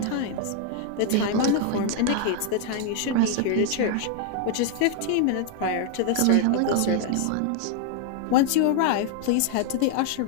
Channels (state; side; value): different; both; correlation 0.00